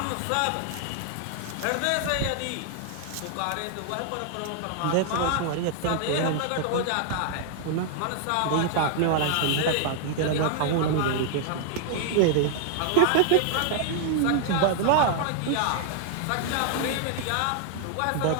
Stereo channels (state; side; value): different; both; correlation 0.00